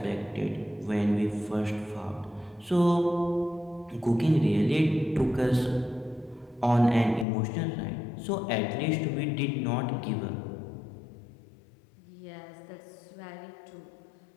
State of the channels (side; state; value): right; drops out; at 7.2 s